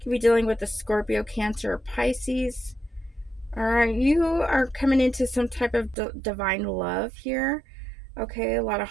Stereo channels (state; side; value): drops out; left; at 6.0 s